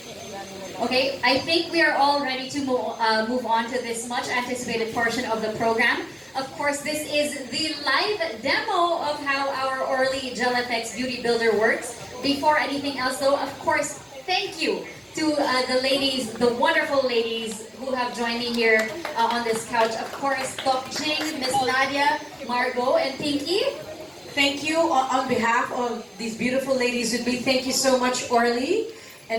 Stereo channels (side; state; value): both; identical; correlation 1.00